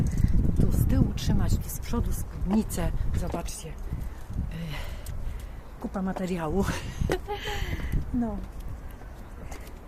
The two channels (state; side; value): identical; both; correlation 1.00